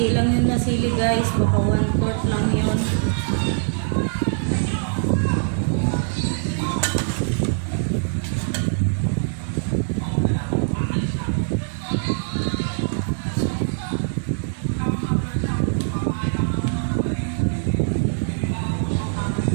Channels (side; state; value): left; silent; digital silence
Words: lang yun na sili guys. Baka 1/4 lang yun.